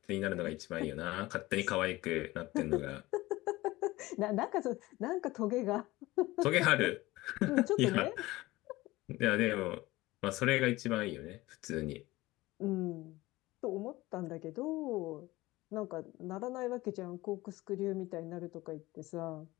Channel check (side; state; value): right; quieter; 19.2 dB